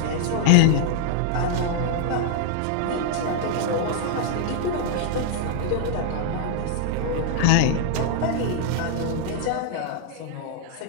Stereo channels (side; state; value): both; different; correlation 0.00